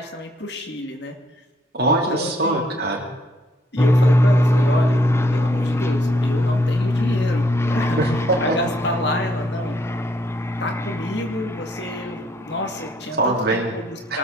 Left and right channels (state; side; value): normal; both; correlation 0.68